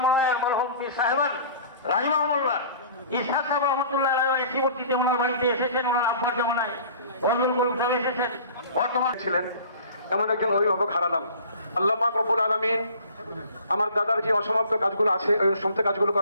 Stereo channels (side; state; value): both; inverted; correlation -0.46